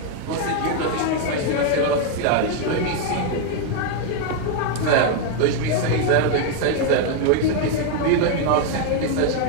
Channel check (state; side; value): different; both; correlation 0.01